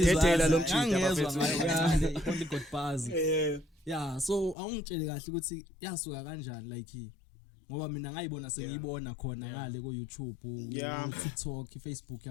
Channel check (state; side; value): drops out; right; at 4.5 s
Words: lo mchitha bafethu. Oligat Buzz. Yeah, so awungitshele kahle ukuthi yasuka kanjani like ngoba mina ngayibona sengiyibona khona ngale ku YouTube, ku TikTok, Facebook